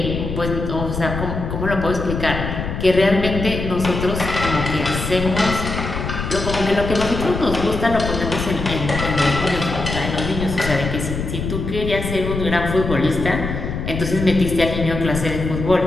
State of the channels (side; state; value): left; noise; rumble, 5 dB below the sound